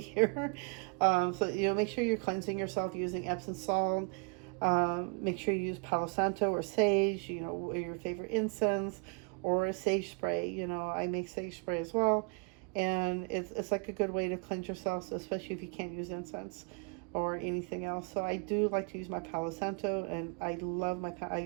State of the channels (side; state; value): left; quieter; 36.5 dB